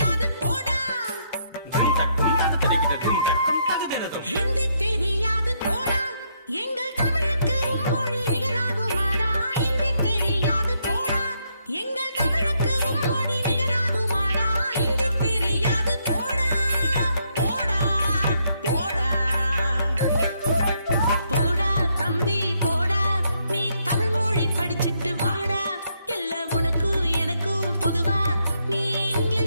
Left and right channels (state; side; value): inverted; both; correlation -0.75